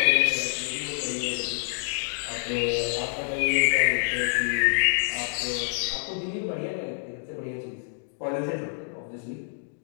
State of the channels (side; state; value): right; silent; digital silence